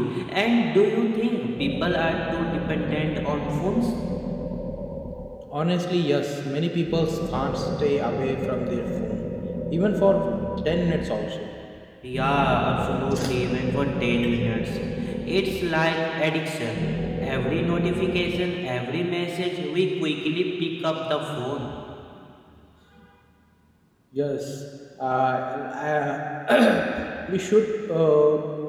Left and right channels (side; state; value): both; identical; correlation 1.00